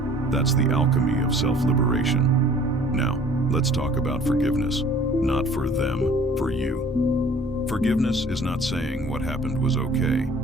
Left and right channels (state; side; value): normal; both; correlation 0.51